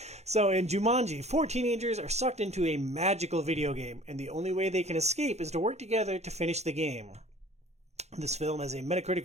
So in Jumanji, 4 teenagers are sucked into a magical video game, and the only way they can escape is to work together to finish the game. This film has a Metacritic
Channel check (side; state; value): left; late; 0.32 ms